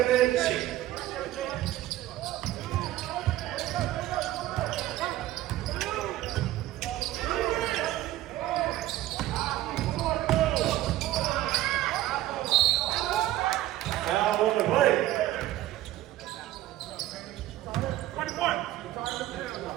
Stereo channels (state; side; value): quieter; left; 14.9 dB